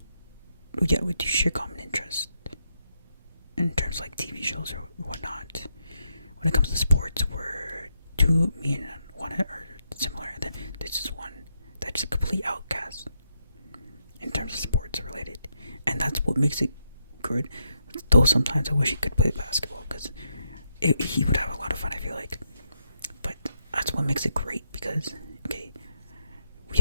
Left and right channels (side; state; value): both; inverted; correlation -0.81